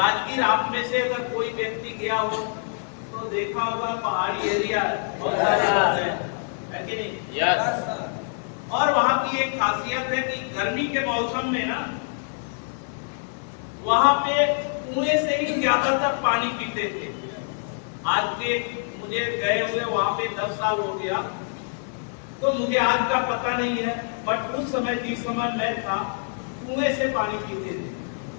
आप में से अगर कोई व्यक्ति गया हो तो देखा होगा, पहाड़ी एरिया बहुत सारे है कि नहीं? और वहां की एक खासियत है कि गर्मी के मौसम में ना वहां पे कुएं से ही ज्यादातर पानी पीते थे। आज के मुझे गए हुए वहां पे 10 साल हो गया, तो मुझे आज का पता नहीं है, बट उस समय जिस समय मैं था कुएं से पानी पीते थे।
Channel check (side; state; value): right; silent; 56 dB below the other